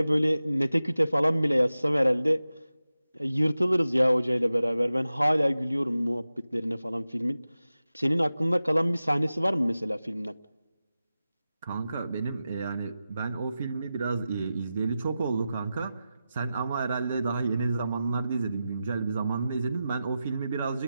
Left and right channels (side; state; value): both; inverted; correlation -0.93